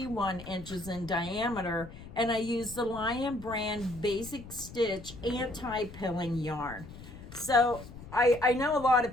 inches in diameter, and I use the Lion Brand Basic Stitch anti-pilling yarn. So I know a lot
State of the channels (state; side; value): noise; left; rumble, 15 dB below the sound